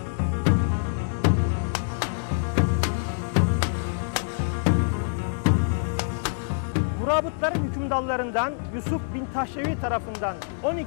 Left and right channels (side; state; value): right; silent; 61 dB below the other